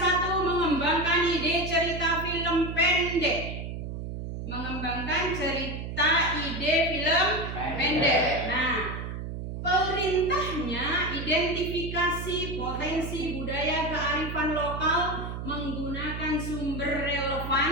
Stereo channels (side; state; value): right; noise; hum, 6 dB below the sound